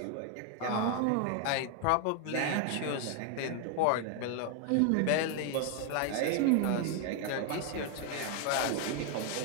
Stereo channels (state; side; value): different; both; correlation 0.01